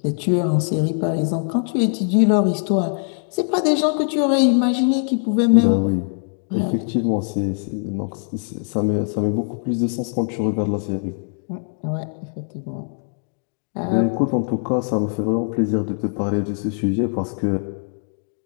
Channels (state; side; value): silent; right; 57 dB below the other